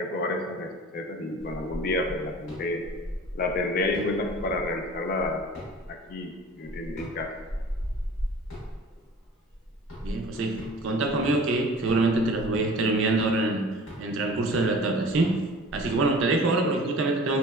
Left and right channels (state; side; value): normal; both; correlation 0.43